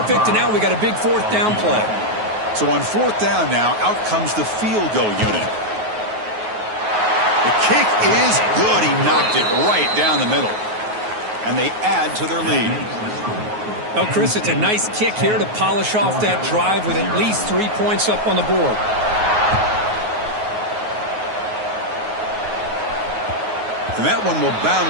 and now we got a big 4th down play. So on 4th down now, out comes the field goal unit. The kick is good. He knocked it right down the middle. And they add to their lead. Well, Chris, it's a nice kick here to polish off that drive with at least 3 points up on the board. And that one will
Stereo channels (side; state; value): left; late; 9.4 ms